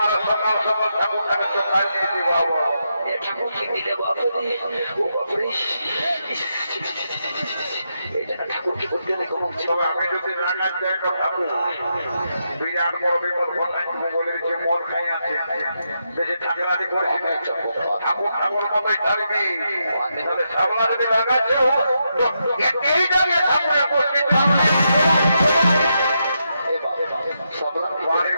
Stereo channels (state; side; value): inverted; both; correlation -0.83